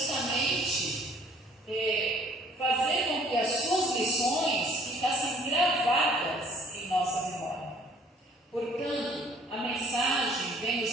fazer com que as suas lições ficassem gravadas em nossa memória. Portanto, a mensagem vem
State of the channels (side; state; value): both; normal; correlation 0.57